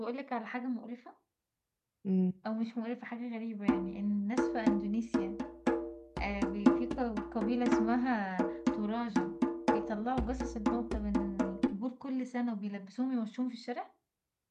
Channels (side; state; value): both; identical; correlation 1.00